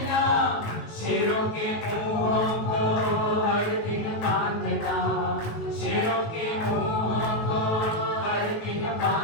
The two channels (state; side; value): late; right; 19 ms